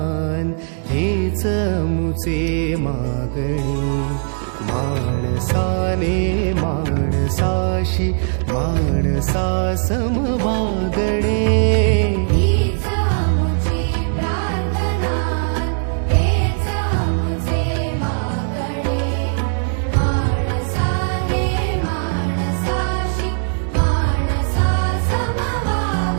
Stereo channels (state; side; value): silent; left; 66 dB below the other